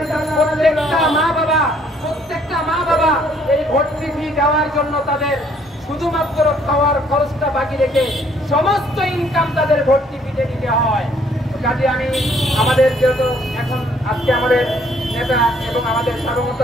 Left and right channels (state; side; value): normal; both; correlation 0.64